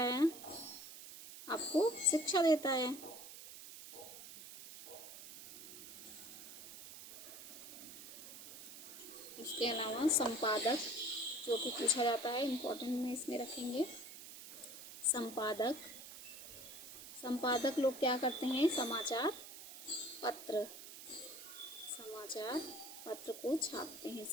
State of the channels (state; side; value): noise; right; hiss, 13 dB below the sound